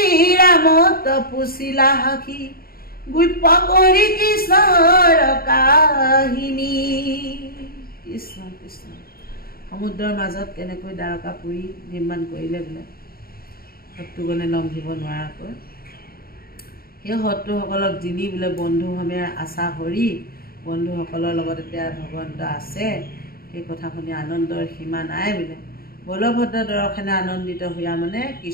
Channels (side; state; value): right; late; 0.43 ms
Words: ৰামত পুচিলা সাখি গুপ্য কৰি কৃষ্ণৰ কাহিনী। কৃষ্ণ কৃষ্ণ সমুদ্ৰৰ মাজত কেনেকৈ দ্বাৰকাপুৰী নিৰ্মাণ কৰিলে বোলে শত্ৰুগণে লংঘিব নোৱাৰাকৈ সেই শত্ৰুসকলক যিনি বোলে বন্ধুসমে আশা হৰি বন্ধুসকলৰ লগত এতিয়া ভগৱন্ত আছে সেই কথা শুনি আনন্দৰ সীমা নাই বোলে। বলভদ্ৰ দৰ্শনে আনন্দিত হোৱা মানে